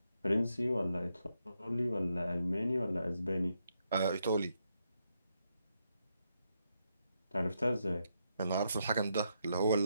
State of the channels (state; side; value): inverted; both; correlation -0.81